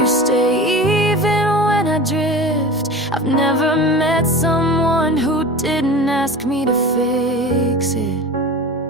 stay even when I drift. I've never met someone who didn't ask me to fix it.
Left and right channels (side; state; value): both; normal; correlation 0.32